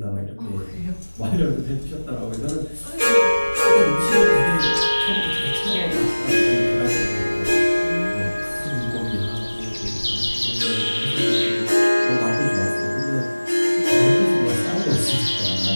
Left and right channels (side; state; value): both; inverted; correlation -1.00